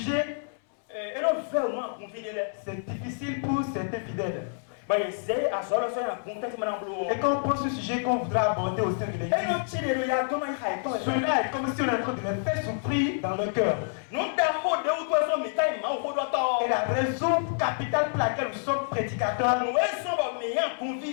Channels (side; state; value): right; silent; 59 dB below the other